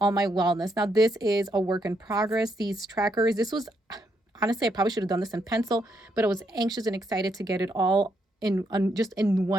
my wellness. Now, this is a work in progress. These trackers, honestly, I probably should have done this in pencil, but I was anxious and excited to get it all just in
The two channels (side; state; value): both; normal; correlation 0.77